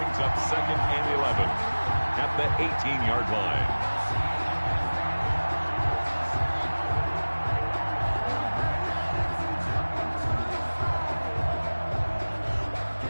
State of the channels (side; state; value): both; inverted; correlation -1.00